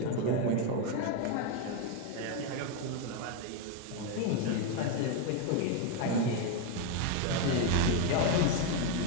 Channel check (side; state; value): both; different; correlation 0.01